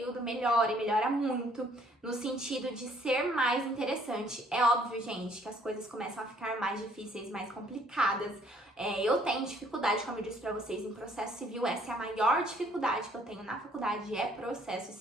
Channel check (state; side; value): normal; both; correlation 0.62